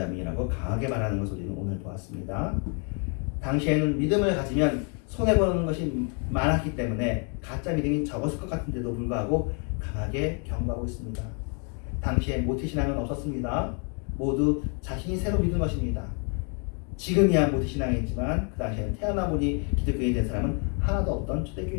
강하게 말하는 것을 우리는 오늘 보았습니다. 당시에는 믿음을 가지면 손해보는 것이 많았기 때문에 가짜 믿음이 적었을 것 같은데도 불구하고 강하게 경고하고 있습니다. 당시에 모태신앙은 없었습니다. 모두 자신이 새로 믿은 것입니다. 지금이야 모태신앙이지만 그 당시에는 태어나보니 기독교인이 된 사람은 하나도 없던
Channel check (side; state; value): right; quieter; 38.6 dB